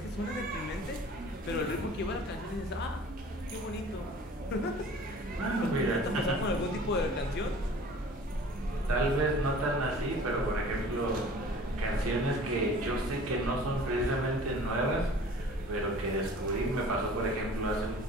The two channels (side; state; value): both; normal; correlation 0.46